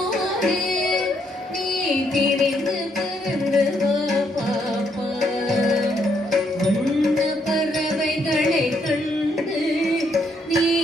நீ திரிந்து பறந்து வா பாப்பா. வண்ண பறவைகளை கண்டு நீ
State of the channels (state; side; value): normal; both; correlation 0.73